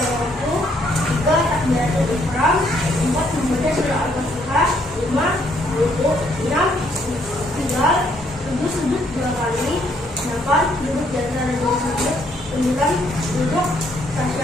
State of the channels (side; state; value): both; normal; correlation 0.69